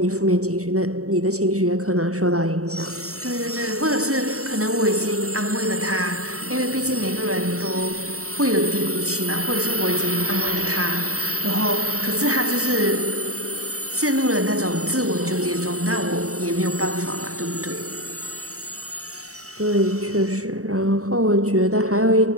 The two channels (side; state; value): left; late; 0.65 ms